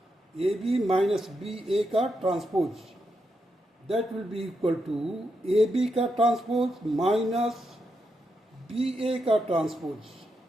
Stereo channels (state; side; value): normal; both; correlation 0.83